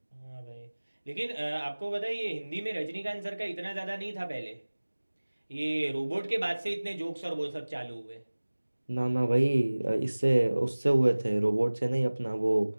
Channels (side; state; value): both; inverted; correlation -1.00